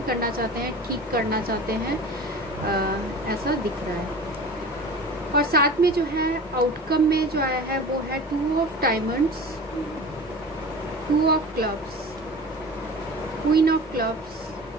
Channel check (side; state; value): both; normal; correlation 0.37